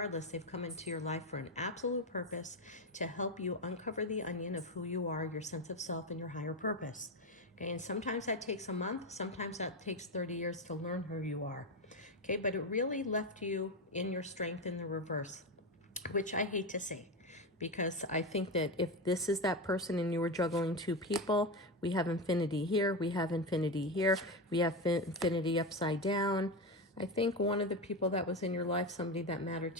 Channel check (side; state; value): both; normal; correlation 0.15